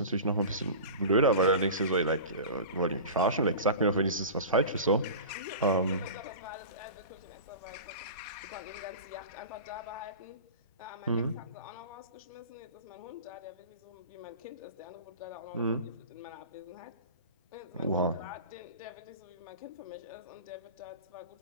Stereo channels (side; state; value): both; inverted; correlation -0.33